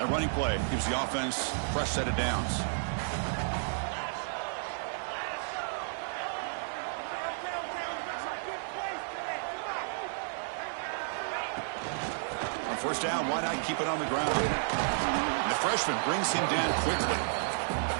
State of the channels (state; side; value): silent; left; digital silence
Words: A running play gives the offense a fresh set of downs. On first down, why not keep it on the ground? And the freshman brings him down quickly.